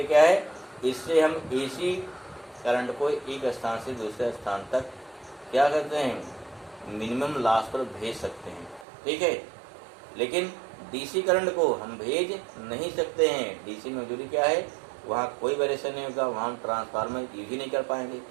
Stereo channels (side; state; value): left; drops out; at 8.8 s